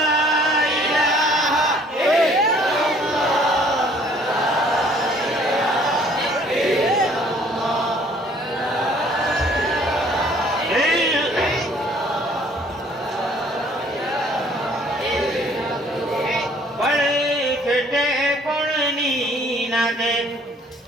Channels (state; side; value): normal; both; correlation 0.58